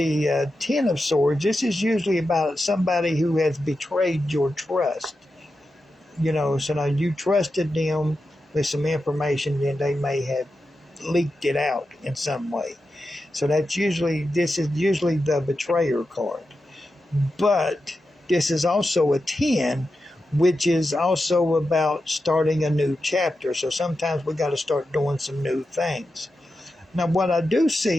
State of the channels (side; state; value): both; normal; correlation 0.90